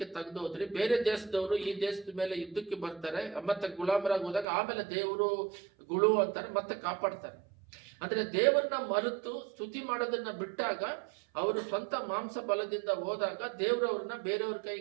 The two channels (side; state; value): left; drops out; at 4.5 s